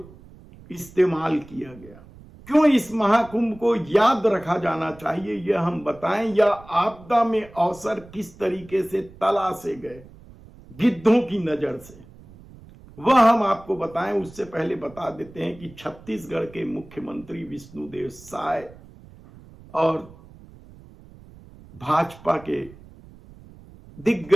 इस्तेमाल किया गया। क्यों इस महाकुंभ को याद रखा जाना चाहिए यह हम बताएं, या आपदा में अवसर किस तरीके से तलाशे गए गिद्धों की नजर से, वह हम आपको बताएं। उससे पहले बता देते हैं कि छत्तीसगढ़ के मुख्यमंत्री विष्णुदेव साय और भाजपा के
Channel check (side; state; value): right; noise; rumble, 21 dB below the sound